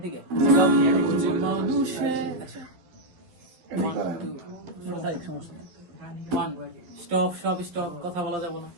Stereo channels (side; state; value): left; late; 11 ms